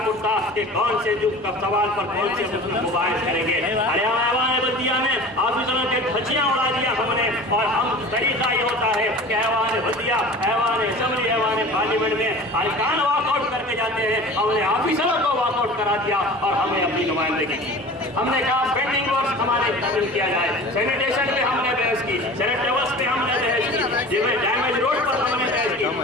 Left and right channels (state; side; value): normal; both; correlation 0.39